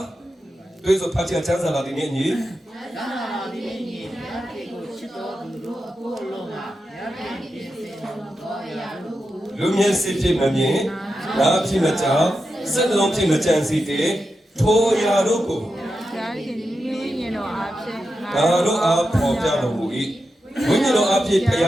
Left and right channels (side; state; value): both; normal; correlation 0.89